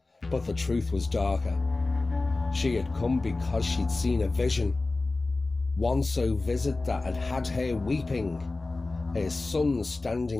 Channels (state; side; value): quieter; right; 3.3 dB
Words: But the truth was darker. She had come because she'd seen a vision, one so vivid that had had her weeping, her son